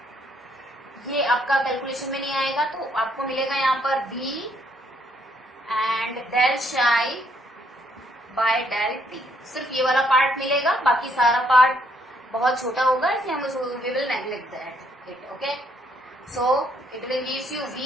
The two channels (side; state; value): both; normal; correlation 0.70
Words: ये आपका कैलकुलेशन में नहीं आएगा तो आपको मिलेगा यहाँ पर v एंड डेल शाई बाय डेल टी। सिर्फ ये वाला पार्ट मिलेगा, बाकी सारा पार्ट बहुत छोटा होगा इसलिए हम we will neglect that it. Okay, so it will gives you